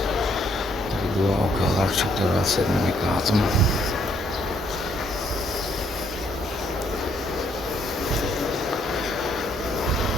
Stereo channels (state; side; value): normal; both; correlation 0.69